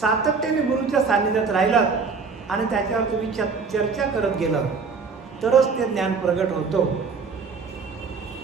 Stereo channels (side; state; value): left; quieter; 5.0 dB